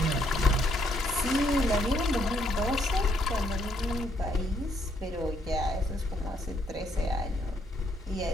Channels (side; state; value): both; normal; correlation 0.71